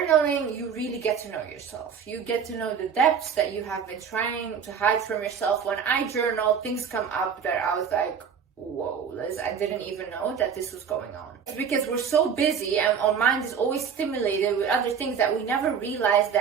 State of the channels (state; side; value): quieter; left; 7.0 dB